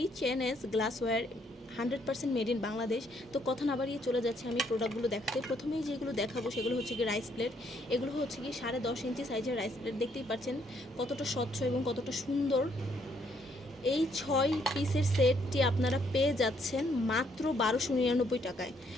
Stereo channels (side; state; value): both; normal; correlation 0.70